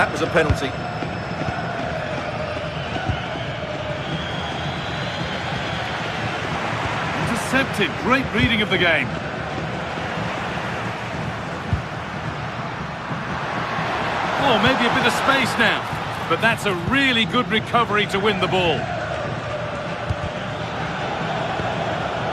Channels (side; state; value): both; identical; correlation 1.00